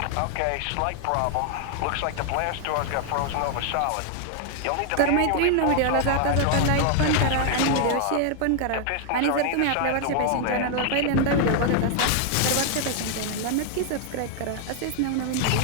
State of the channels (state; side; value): different; both; correlation 0.00